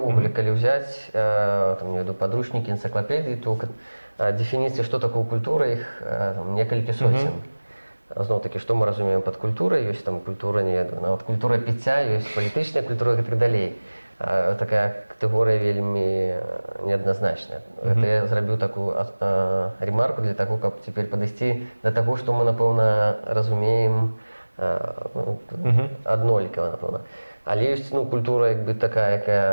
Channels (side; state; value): both; inverted; correlation -1.00